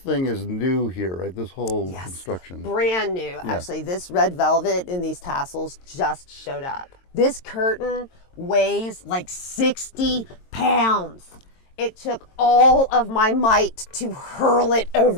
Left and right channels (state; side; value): late; right; 22 ms